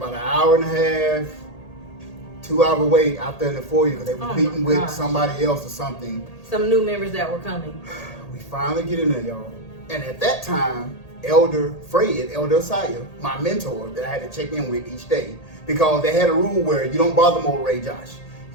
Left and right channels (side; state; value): right; late; 1.8 ms